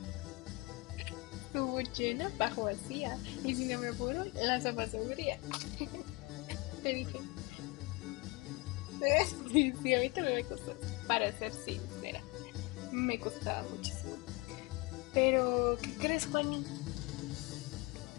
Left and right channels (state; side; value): quieter; right; 24.8 dB